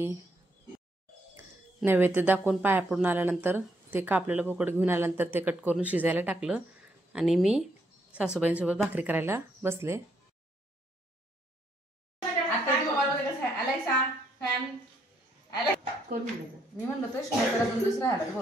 नैवेद्य दाखवून पाया पडून आल्यानंतर ते कापलेलं बोकड घेऊन आल्यानंतर ते कट करून शिजायला टाकलं आणि मी सासूबाईंसोबत भाकरी करायला बसले. मी म्हणलं तर शिवायला दुसरा आला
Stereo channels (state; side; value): normal; both; correlation 0.74